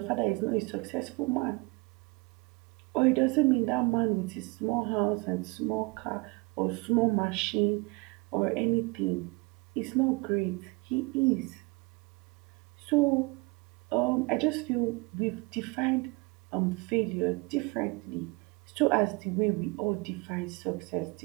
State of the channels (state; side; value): quieter; left; 26.5 dB